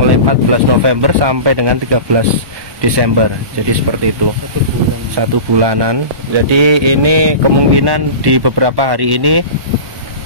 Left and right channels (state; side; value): late; left; 1.2 ms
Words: 14 November sampai dengan 13 Desember. Jadi seperti itu, 1 bulanan. Jadi ini kemungkinan di beberapa hari ini